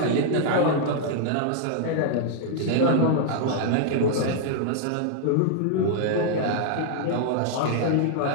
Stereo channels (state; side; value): different; both; correlation -0.01